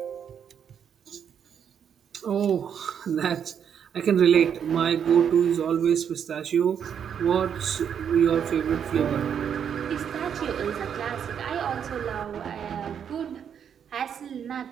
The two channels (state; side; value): quieter; left; 8.1 dB